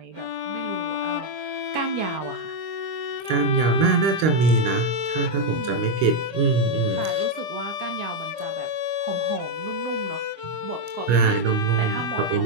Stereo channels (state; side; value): late; left; 25 ms